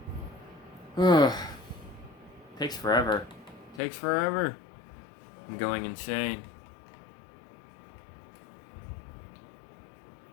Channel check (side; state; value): right; drops out; at 3.8 s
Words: Ugh. Takes forever. Takes forever. I'm going insane.